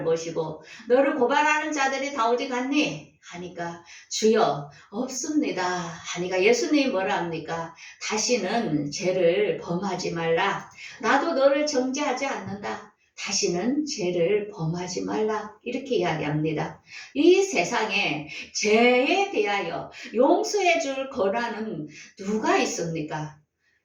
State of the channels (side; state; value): both; identical; correlation 1.00